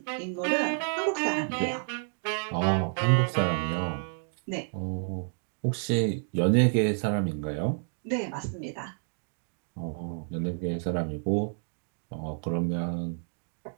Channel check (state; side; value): silent; left; 58 dB below the other